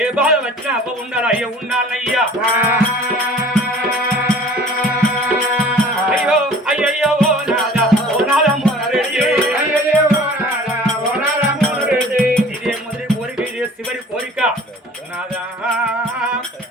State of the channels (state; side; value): normal; both; correlation 0.47